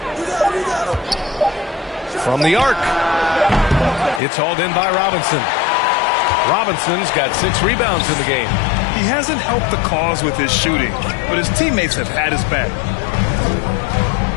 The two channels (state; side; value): drops out; right; at 4.2 s